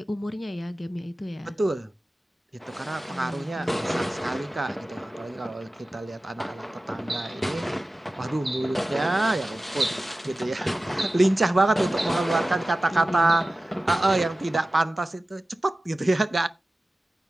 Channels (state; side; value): normal; both; correlation 0.96